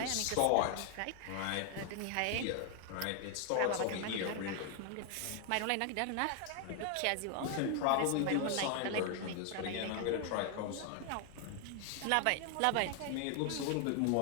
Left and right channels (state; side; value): different; both; correlation 0.00